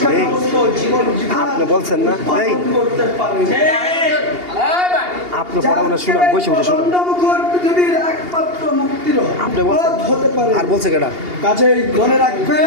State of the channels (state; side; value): late; left; 2.8 ms